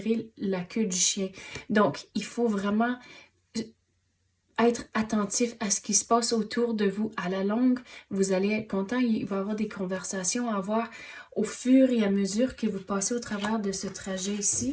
la queue du chien. Donc, il faut vraiment être attentif à ce qui se passe autour de vous. À la longue, vous allez être content, il va y avoir des conversations à avoir au fur et à mesure que vous passez au travers de ce trajet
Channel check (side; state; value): both; identical; correlation 1.00